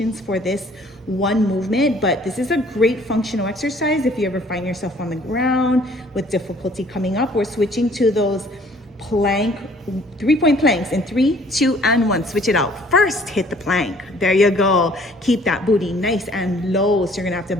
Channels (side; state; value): both; normal; correlation 0.57